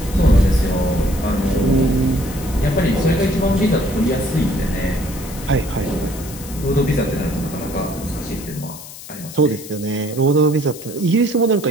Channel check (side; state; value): left; noise; hiss, 15 dB below the sound